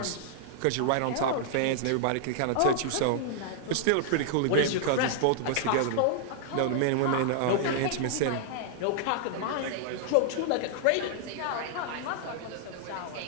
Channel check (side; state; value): both; different; correlation -0.01